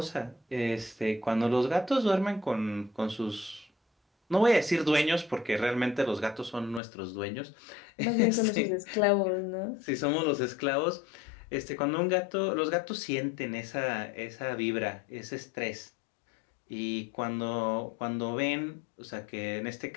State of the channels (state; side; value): drops out; right; at 6.8 s